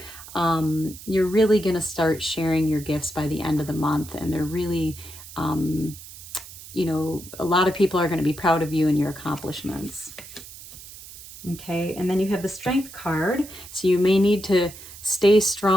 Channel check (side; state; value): right; noise; hiss, 16 dB below the sound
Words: you're really going to start sharing your gifts by the end of the month. And they're really, you know, a lot of people are going to be proud of you and your accomplishments. Okay, and then you have the Strength card. So you may need to stay